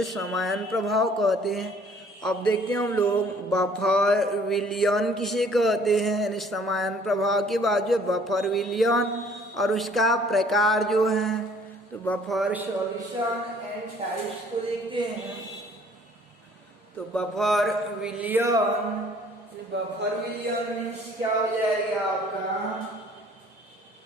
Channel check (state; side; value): normal; both; correlation 0.57